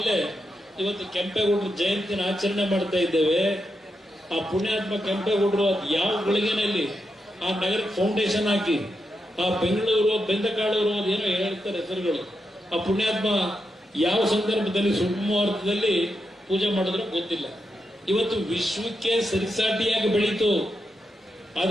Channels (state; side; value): normal; both; correlation 0.85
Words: ಇವತ್ತು ಕೆಂಪೇಗೌಡರ ಜಯಂತಿನ ಆಚರಣೆ ಮಾಡ್ತಾ ಇದ್ದೇವೆ. ಆ ಪುಣ್ಯಾತ್ಮ ಕೆಂಪೇಗೌಡರು ಅದು ಯಾವ ಗಳಿಗೆನಲ್ಲಿ ಆ ನಗರಕ್ಕೆ ಫೌಂಡೇಶನ್ ಹಾಕಿ, ಆ ಬೆಂಗಳೂರು ಬೆಂದಕಾಳೂರು ಅದೇನೋ ಹೇಳ್ತಾರೆ ಹೆಸರುಗಳು, ಆ ಪುಣ್ಯಾತ್ಮ ಯಾವ ಸಂದರ್ಭದಲ್ಲಿ ಸುಮುಹೂರ್ತದಲ್ಲಿ ಪೂಜೆ ಮಾಡಿದ್ರು ಗೊತ್ತಿಲ್ಲ. ಇವತ್ತು ವಿಶ್ವಕ್ಕೆ ಸರಿಸಾಟಿಯಾಗಿ ಬೆಳೀತು.